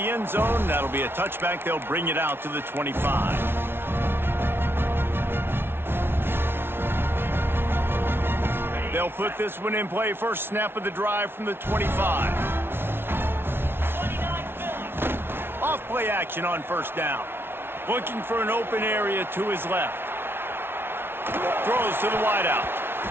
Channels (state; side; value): late; left; 0.11 ms